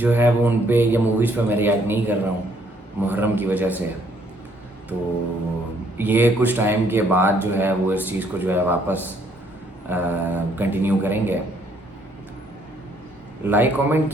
ہے وہ ان پہ یا موویز پہ میں ریئیکٹ نہیں کر رہا ہوں محرم کی وجہ سے. تو یہ کچھ ٹائم کے بعد جو ہے وہ اس چیز کو جو ہے واپس کنٹینیو کریں گے. لائک کامنٹ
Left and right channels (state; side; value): normal; both; correlation 0.66